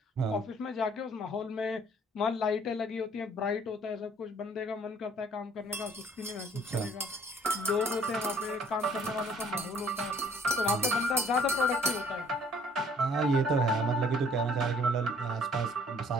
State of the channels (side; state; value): both; normal; correlation 0.59